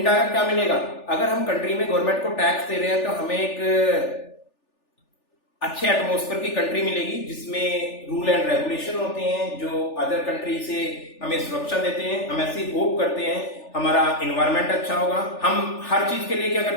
क्या मिलेगा? अगर हम कंट्री में गवर्नमेंट को टैक्स दे रहे हैं तो हमें एक अच्छे एटमॉस्फेयर की कंट्री मिलेगी जिसमें रूल एंड रेगुलेशन होते हैं जो अदर कंट्री से हमें सुरक्षा देते हैं। हम ऐसी होप करते हैं हमारा एनवायरमेंट अच्छा होगा। हम हर चीज के लिए क्या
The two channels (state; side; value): late; right; 3.4 ms